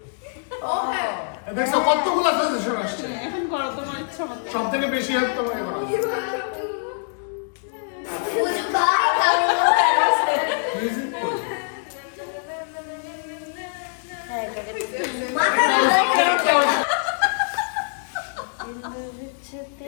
দেখছো কতগুলো সাজেশন আসছে এখন করো তোমার ইচ্ছা মতো সব থেকে বেশি হেল্প তোমাকে করা মিউজিক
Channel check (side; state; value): right; silent; digital silence